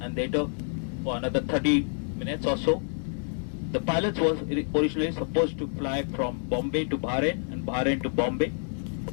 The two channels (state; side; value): silent; right; 59 dB below the other